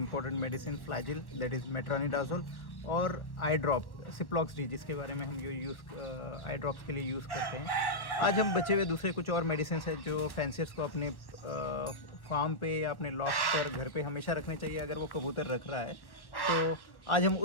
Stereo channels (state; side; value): late; right; 1.1 ms